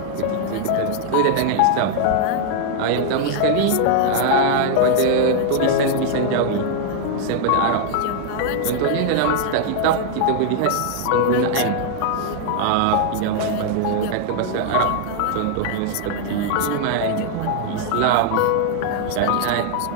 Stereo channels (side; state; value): both; different; correlation 0.00